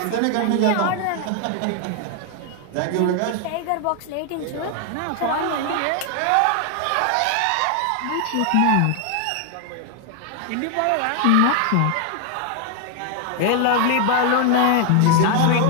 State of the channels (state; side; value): different; both; correlation 0.00